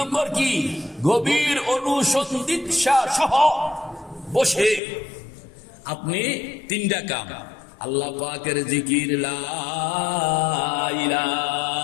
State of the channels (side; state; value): right; drops out; at 4.8 s